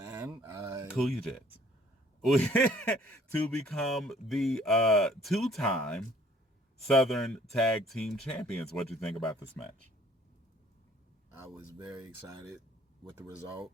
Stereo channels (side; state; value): both; normal; correlation 0.57